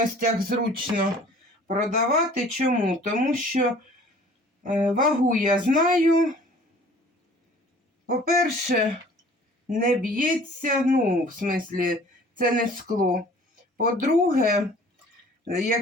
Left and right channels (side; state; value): both; normal; correlation 0.50